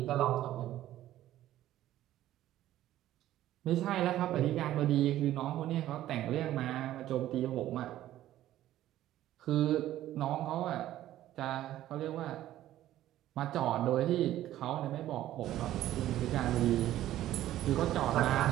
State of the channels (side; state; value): left; quieter; 13.5 dB